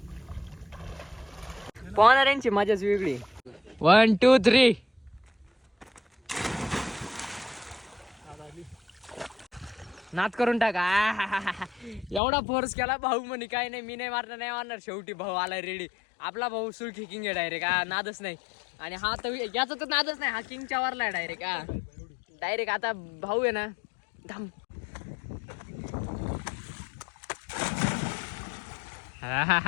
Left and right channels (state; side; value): drops out; right; at 12.2 s